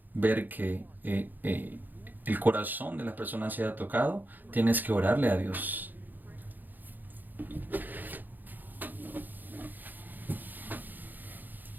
ver que el corazón de las personas sea tocado, tienes que orarle a Dios.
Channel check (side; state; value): left; late; 0.087 ms